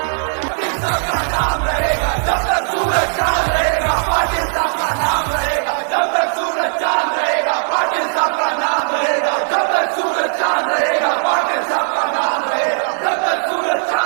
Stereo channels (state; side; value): silent; left; digital silence